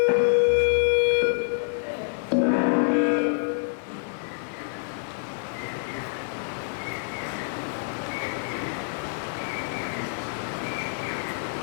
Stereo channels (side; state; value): right; silent; 60 dB below the other